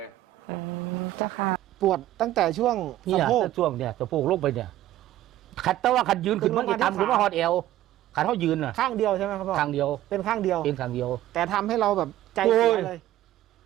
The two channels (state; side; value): quieter; left; 14.1 dB